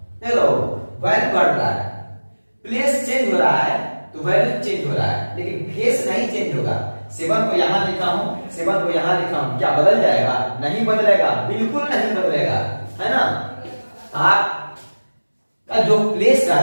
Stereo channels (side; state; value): both; inverted; correlation -1.00